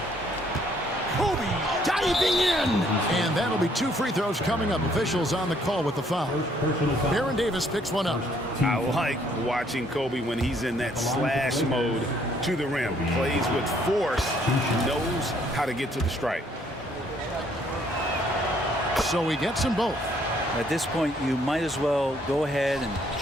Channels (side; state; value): both; normal; correlation 0.66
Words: Kobe diving in. And that'll be 2 free throws coming up. Officials on the call with the foul. Baron Davis picks one up. I like watching Kobe when he's in that slash mode to the rim. Plays with force, knows how to get to the stripe. So he gets them both. At this point, you might as well go ahead and